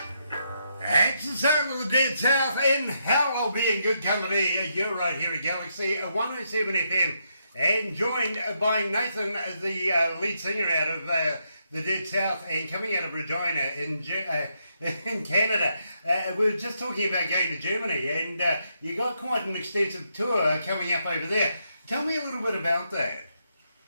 It's the sound of the Dead South, and hell, I'll be in good company. You're right here at Galaxy 107 FM, and joined by Nathan, the lead singer out of the Dead South, and coming out of Regina in Canada. We were just talking about going to Germany, and you got quite an extensive tour coming up over there. Tell me a little bit about that.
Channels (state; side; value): inverted; both; correlation -0.79